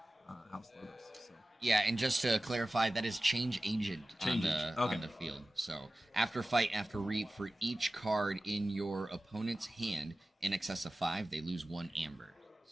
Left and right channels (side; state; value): both; normal; correlation 0.96